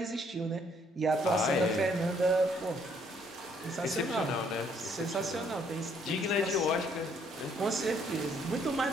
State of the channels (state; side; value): normal; both; correlation 0.66